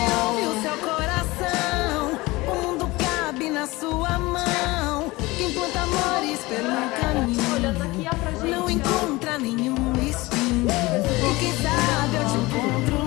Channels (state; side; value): quieter; right; 21.3 dB